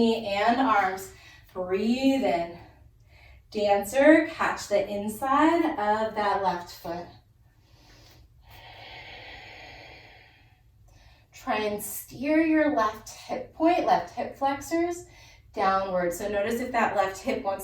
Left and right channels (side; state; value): both; identical; correlation 1.00